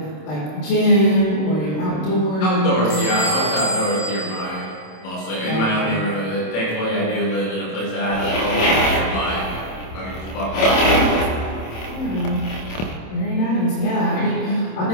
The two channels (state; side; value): late; right; 26 ms